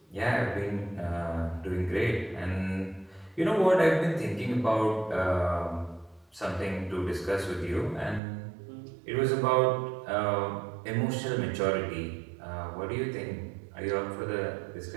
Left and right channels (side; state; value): left; drops out; at 8.2 s